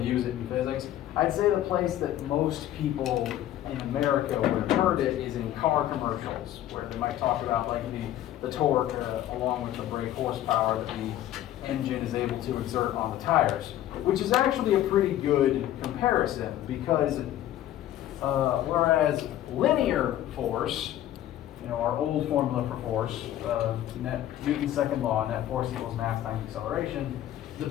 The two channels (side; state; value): right; quieter; 12.7 dB